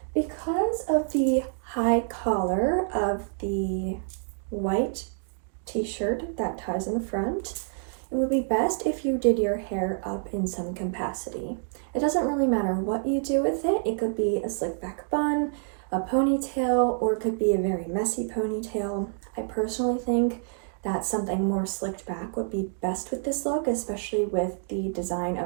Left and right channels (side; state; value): left; silent; digital silence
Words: because of the high collar of the white t-shirt that ties in the front, it would be best if you did your hair up in some capacity. It doesn't really matter what you do with it. It could be a slick back bun, a ponytail, or it could be a very messy ponytail. I personally think that something more slicked back would be best with this look, especially with the design